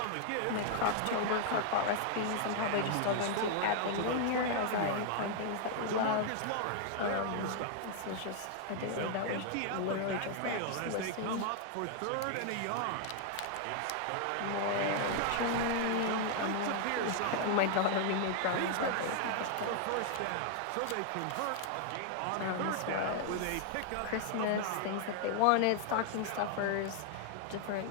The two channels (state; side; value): different; both; correlation 0.00